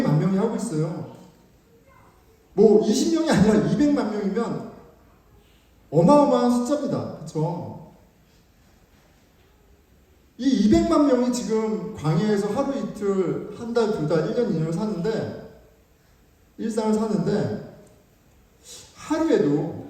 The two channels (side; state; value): both; identical; correlation 1.00